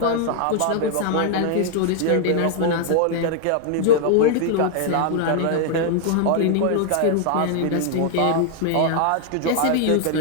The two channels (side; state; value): both; different; correlation 0.00